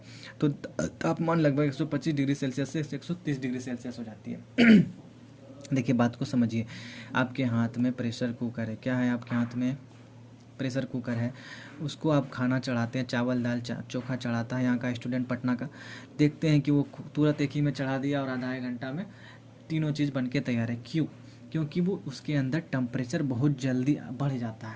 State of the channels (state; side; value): identical; both; correlation 1.00